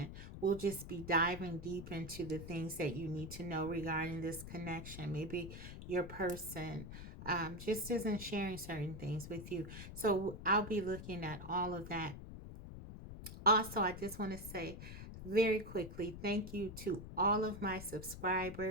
we'll just be diving deep into the things that you need to know regarding this connection. Maybe your person just isn't sharing certain things with you. So I'll be looking at all of that. Also, I just want to say very quickly, thank you to all of my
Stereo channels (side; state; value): left; noise; rumble, 11 dB below the sound